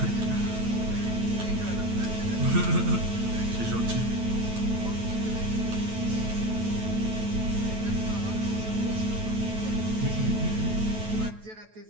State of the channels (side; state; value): left; late; 9.2 ms